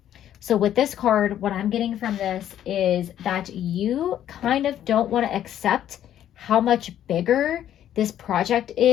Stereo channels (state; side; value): quieter; right; 11.1 dB